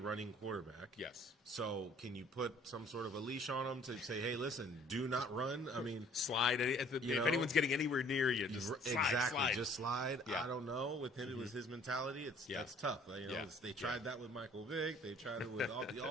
quarterback. Yes. So can you put some sort of a leash on him to say, hey, listen, do not run? Slide. If anyone's getting anywhere near you, just slide. Just slide. Yeah. I don't know. With him, it was his mentality. That's tough. They tried that with Michael Vick. They tried it with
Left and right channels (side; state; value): both; normal; correlation 0.55